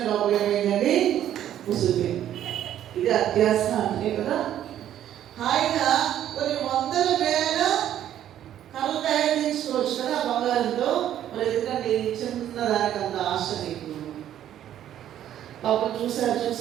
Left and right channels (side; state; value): left; quieter; 11.2 dB